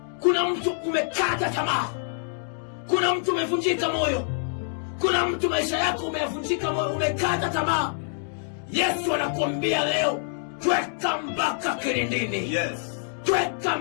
Kuna mtu umekata tamaa, kuna mtu umevunjika moyo, kuna mtu maisha yako umevunjika moyo, umekata tamaa. Yesu anakuambia leo, tweka mpaka kilindini. Yes. Tweka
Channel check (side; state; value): right; silent; digital silence